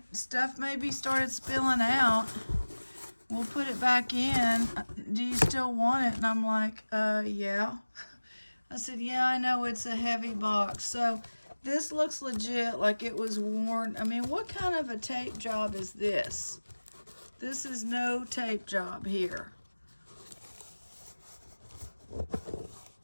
Stuff maybe started spilling out. We'll put it back in. Do you still want it? And I'm like, yeah. I said, yeah, I know it's a heavy box. So this looks legit, like it was worn. I mean, what kind of a tape job is this? This is no tape job here.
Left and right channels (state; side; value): inverted; both; correlation -1.00